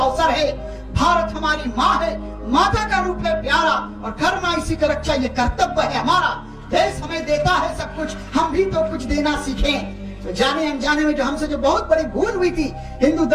है। भारत हमारी माँ है, माता का रूप है प्यारा, और घर माँ इसी का रक्षा ये कर्तव्य है हमारा। देश हमें देता है सब कुछ, हम भी तो कुछ देना सीखें। तो जाने अनजाने में जो हमसे जो बहुत बड़ी भूल हुई थी, हिंदू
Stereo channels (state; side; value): identical; both; correlation 1.00